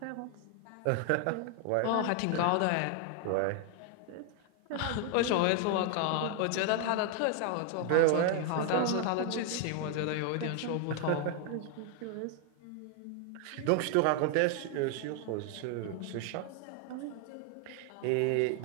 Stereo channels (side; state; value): both; different; correlation 0.00